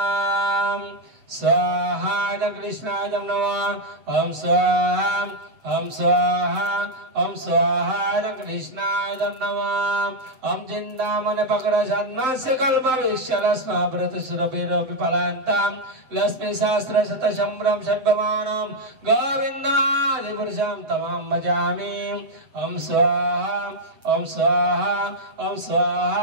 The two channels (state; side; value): late; left; 7.8 ms